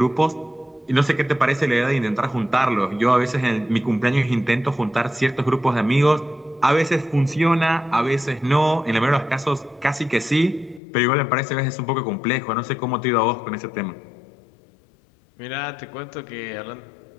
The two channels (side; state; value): right; drops out; at 10.8 s